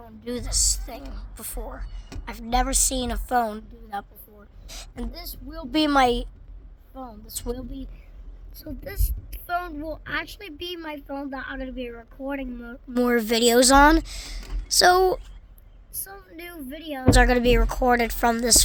do this thing before. I've never seen a phone do that before. And this will be my phone. This phone will actually be my phone that I'm going to be recording more videos on. So, some new videos are going to be recorded from this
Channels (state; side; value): identical; both; correlation 1.00